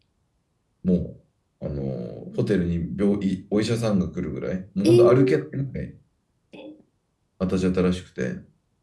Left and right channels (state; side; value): identical; both; correlation 1.00